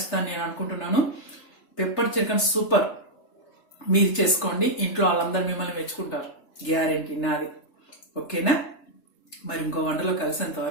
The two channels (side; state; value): right; late; 3.3 ms